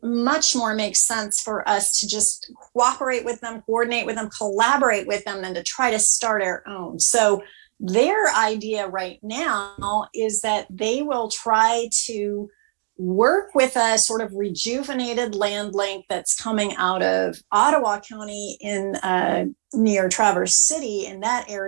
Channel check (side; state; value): left; silent; digital silence